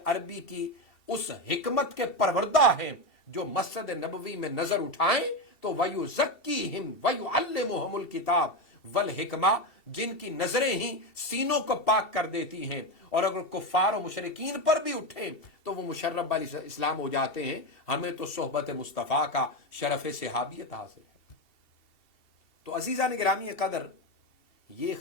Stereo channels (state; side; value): late; right; 2.7 ms